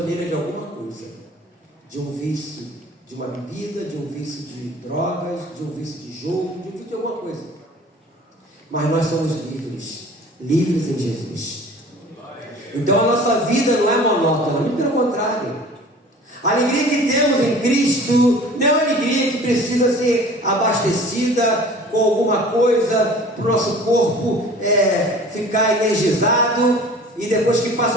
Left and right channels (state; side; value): normal; both; correlation 0.45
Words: de alguma coisa, de um vício, de uma bebida, de um vício de drogas, de um vício de jogo, de um vício de alguma coisa. Mas nós somos livres, livres em Jesus. Então a nossa vida não é monótona, muito pelo contrário. A alegria que temos em Cristo não é uma alegria que precisa ser abastecida com alguma coisa para o nosso corpo ficar energizado, e depois que